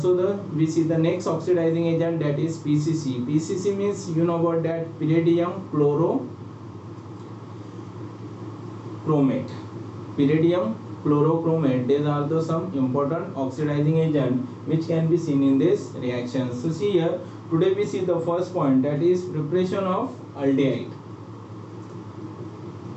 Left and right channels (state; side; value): identical; both; correlation 1.00